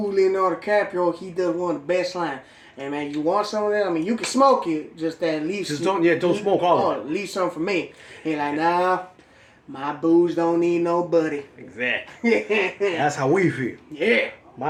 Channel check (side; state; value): both; identical; correlation 1.00